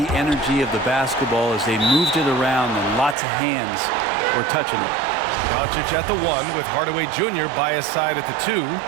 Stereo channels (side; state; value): left; drops out; at 3.2 s